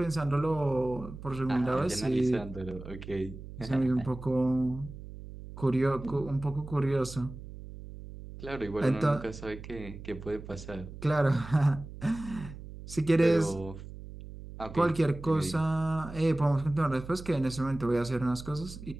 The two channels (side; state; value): right; noise; hum, 13 dB below the sound